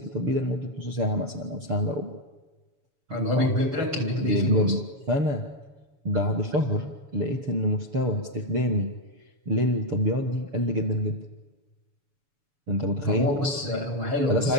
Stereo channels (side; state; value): left; late; 7.0 ms